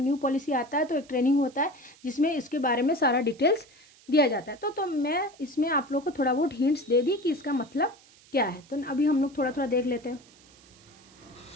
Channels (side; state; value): right; noise; hiss, 26 dB below the sound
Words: न्यू पॉलिसी आता है तो एक ट्रेनिंग होता है जिसमें इसके बारे में सारा डिटेल्स दिया जाता है। तो मैं इसमें आप लोग को थोड़ा बहुत हिंट्स दे दी कि इसका मतलब क्या है। तो अभी हम लोग थोड़ा थोड़ा देख लेते हैं।